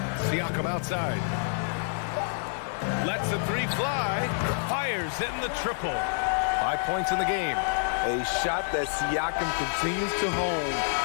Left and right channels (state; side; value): silent; right; digital silence